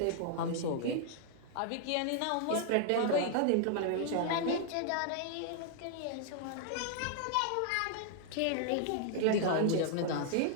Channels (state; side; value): different; both; correlation -0.01